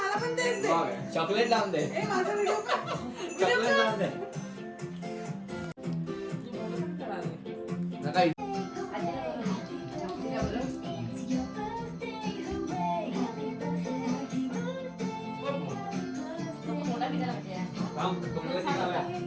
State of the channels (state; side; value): identical; both; correlation 1.00